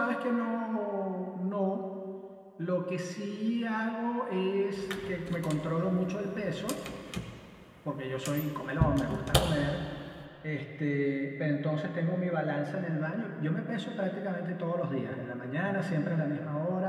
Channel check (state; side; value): identical; both; correlation 1.00